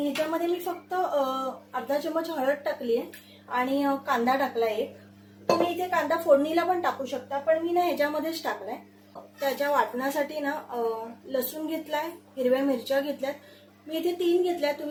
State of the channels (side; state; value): both; identical; correlation 1.00